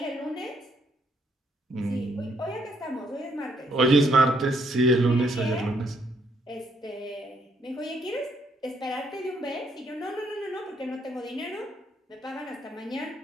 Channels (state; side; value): normal; both; correlation 0.71